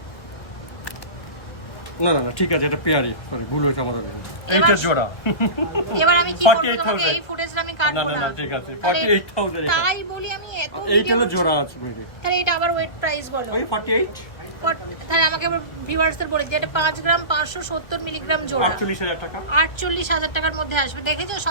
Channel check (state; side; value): late; right; 1.4 ms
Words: না ঠিক আছে, এটা পেয়ারি। সরি, ভুল হয়েছে আমাদের। এইটা জোড়া। এবার আমি কি করব? তোমাকে এই ফুটেজটা আমি কাটবো না। না ঠিক আছে, 48,000 এটা। তাই বলি আমি এত এইটা হলো জোড়া আছে মেরে। তাহলে এটা আবার ওয়েট প্রাইস বলো। ওই 48। তাহলে আমাকে ভিউয়ার্সদের বলে দিই, এটা 5 গ্রাম 570 মিলিগ্রাম জোড়া 48,000 টাকা। 48,000 টাকার মধ্যে আসবে। দেখেছো